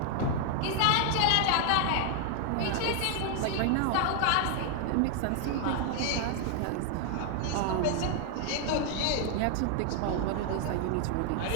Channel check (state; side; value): different; both; correlation 0.00